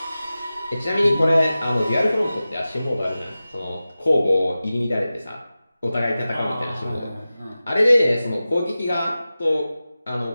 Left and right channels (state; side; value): inverted; both; correlation -0.95